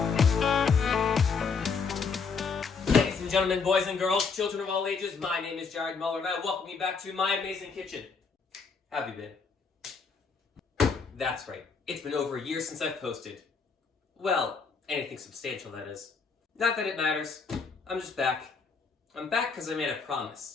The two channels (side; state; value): right; quieter; 5.2 dB